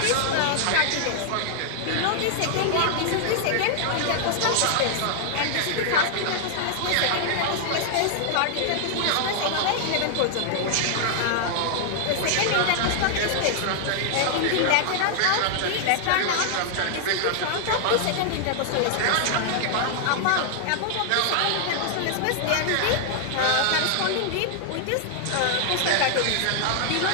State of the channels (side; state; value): both; different; correlation 0.00